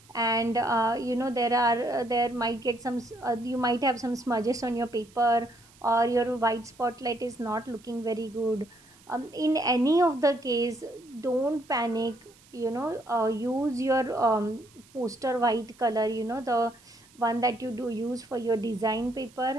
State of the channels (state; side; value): noise; right; hiss, 27 dB below the sound